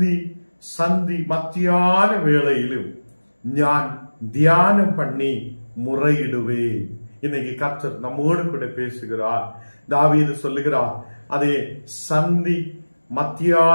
சந்தி மத்தியான வேளையிலும் நான் தியானம் பண்ணி முறையிடுவேன். இன்னைக்கு கர்த்தர் நம்மோடு கூட பேசுகிறார். தாவீது சொல்லுகிறார், அதே சந்தி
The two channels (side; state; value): both; inverted; correlation -1.00